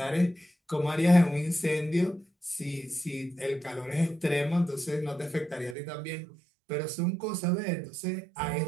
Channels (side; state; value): left; drops out; at 5.8 s